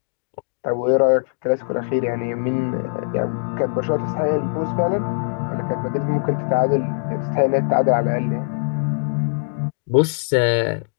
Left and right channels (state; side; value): silent; right; digital silence